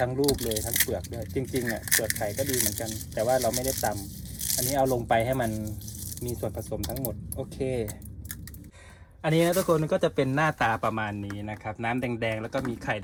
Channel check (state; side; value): identical; both; correlation 1.00